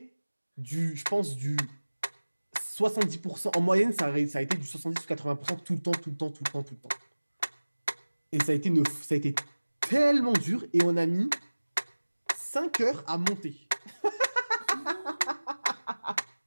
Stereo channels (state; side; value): inverted; both; correlation -1.00